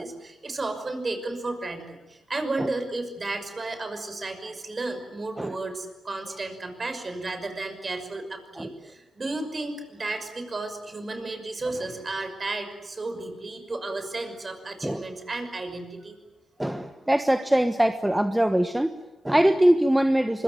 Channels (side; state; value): both; normal; correlation 0.97